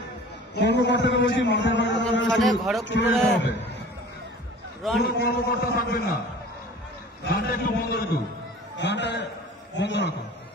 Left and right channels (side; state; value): both; normal; correlation 0.44